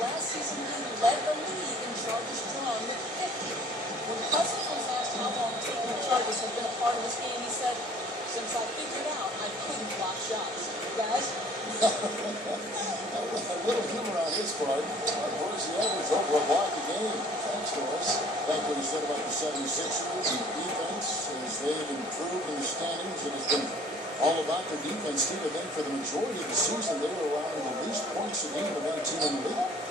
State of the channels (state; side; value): normal; both; correlation 0.53